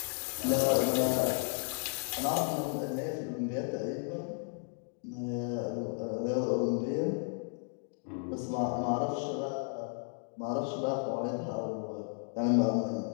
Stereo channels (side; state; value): right; silent; 55 dB below the other